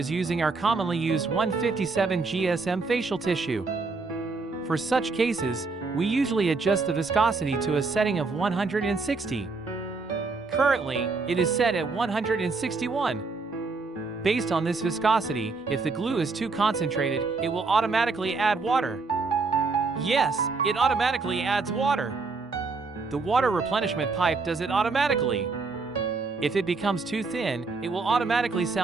using our commonly used 157 GSM facial tissue. For such cases, we usually adjust the viscosity to a setting of 160. Currently, it is set at 161. Based on this viscosity, if the glue is too concentrated, it will automatically add water. Yes, it automatically adds water. The water replenishment pipe does it automatically. If it becomes too thin, it will automatically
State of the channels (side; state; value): left; quieter; 4.1 dB